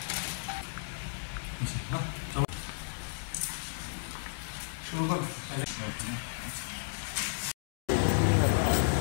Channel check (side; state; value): right; silent; digital silence